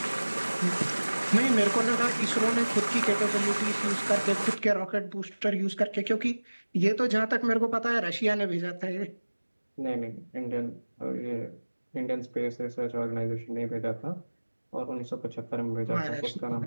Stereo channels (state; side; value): inverted; both; correlation -1.00